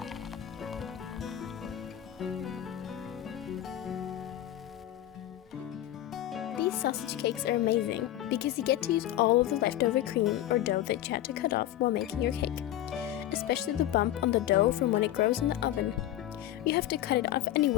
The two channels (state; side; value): quieter; right; 13.1 dB